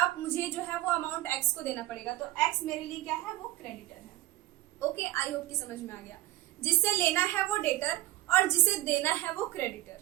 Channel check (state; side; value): quieter; left; 16.5 dB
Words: मुझे जो है वो अमाउंट एक्स को देना पड़ेगा, तो एक्स मेरे लिए क्या है, वो क्रेडिटर है। ओके, आई होप कि समझ में आ गया। जिससे लेना है वो डेटर और जिसे देना है वो